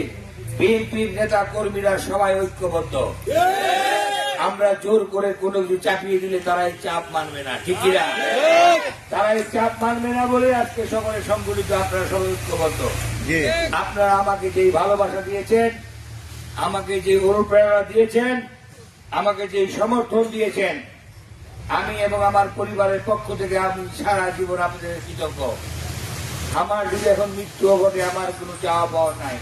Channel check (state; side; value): identical; both; correlation 1.00